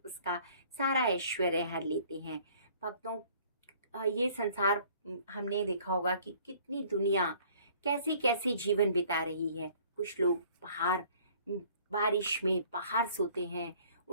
सारा ऐश्वर्य हर लेते हैं। भक्तों, ये संसार हमने देखा होगा कि कितनी दुनिया कैसे कैसे जीवन बिता रही है। कुछ लोग बाहर बारिश में बाहर सोते हैं,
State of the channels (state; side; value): inverted; both; correlation -0.55